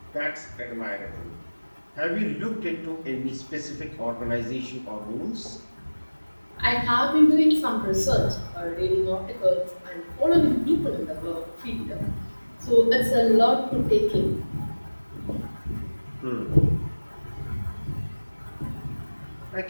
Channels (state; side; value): inverted; both; correlation -1.00